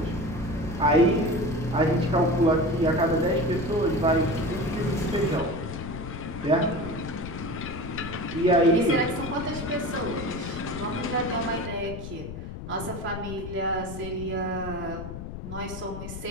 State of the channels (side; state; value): left; noise; rumble, 9 dB below the sound